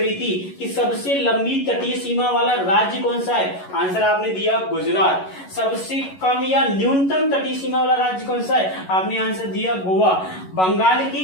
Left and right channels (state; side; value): late; right; 11 ms